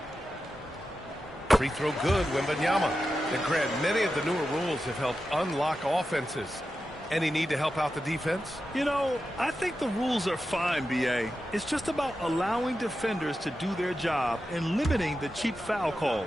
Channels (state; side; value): normal; both; correlation 0.91